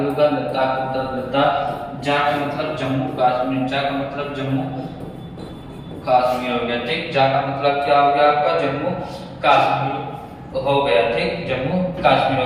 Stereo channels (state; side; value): identical; both; correlation 1.00